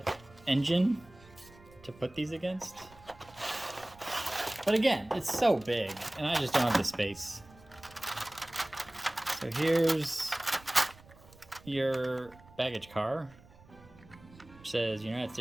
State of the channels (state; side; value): noise; right; rumble, 23 dB below the sound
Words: engine to put these against. But again, it's so big and I just don't have the space. So here's your baggage car, which says United